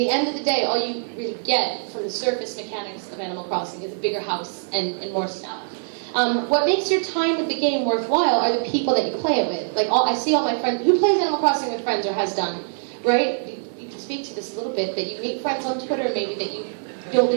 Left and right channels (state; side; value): silent; left; digital silence